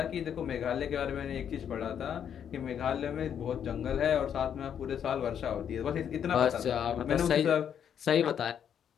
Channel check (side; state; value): right; quieter; 8.6 dB